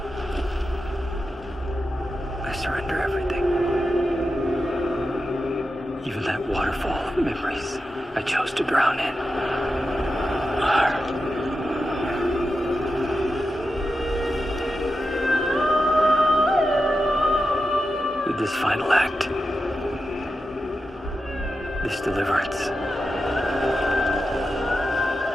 I surrender everything. Even that waterfall of memories I chose to drown in. With this final act, this deliverance,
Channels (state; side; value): normal; both; correlation 0.90